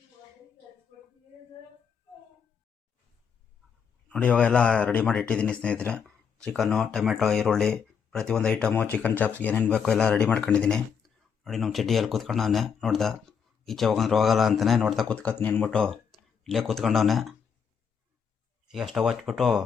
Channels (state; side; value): quieter; right; 6.9 dB